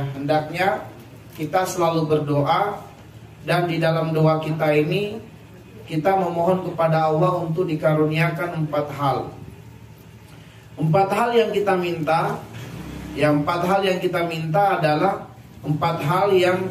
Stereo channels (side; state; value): both; identical; correlation 1.00